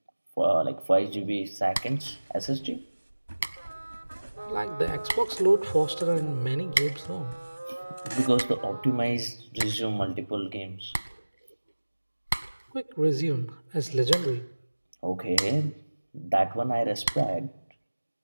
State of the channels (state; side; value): inverted; both; correlation -1.00